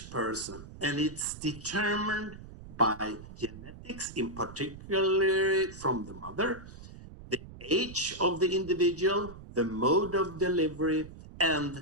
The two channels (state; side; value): noise; right; rumble, 15 dB below the sound